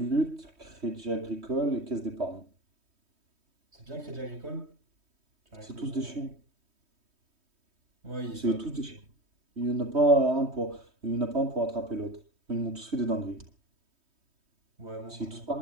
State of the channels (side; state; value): left; late; 3.2 ms